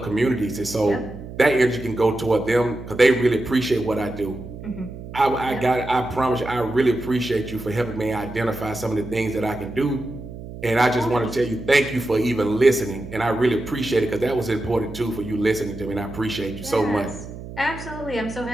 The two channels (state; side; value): noise; right; hum, 12 dB below the sound